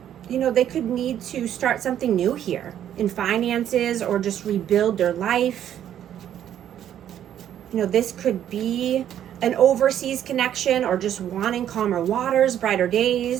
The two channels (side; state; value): left; quieter; 10.5 dB